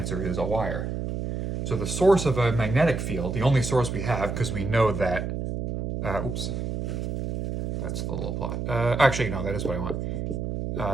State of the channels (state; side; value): noise; right; hum, 3 dB below the sound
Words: is a wire. So the source of a magnetic field, the only source we have, because we know that, that's the little plot. Actually, no, that is what I